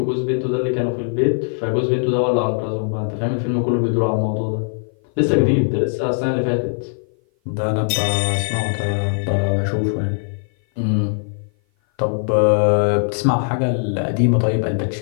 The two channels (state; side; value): silent; right; 56 dB below the other